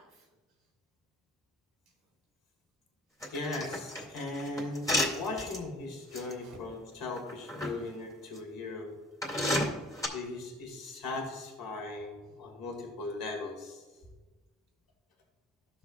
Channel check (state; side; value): normal; both; correlation 0.48